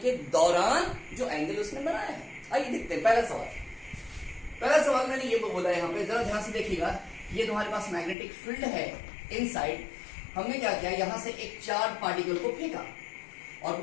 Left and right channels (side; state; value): right; drops out; at 8.2 s